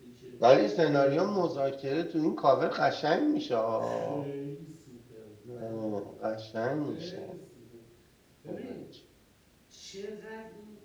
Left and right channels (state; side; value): identical; both; correlation 1.00